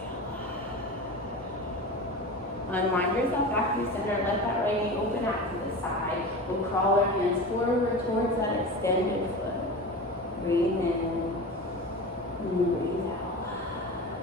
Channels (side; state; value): both; normal; correlation 0.29